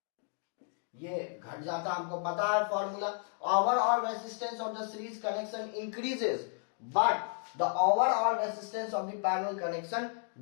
ये घट जाता, हमको पता है formula. Overall resistance of the series connection increases but the overall resistance of the parallel connection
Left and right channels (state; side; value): silent; right; 56 dB below the other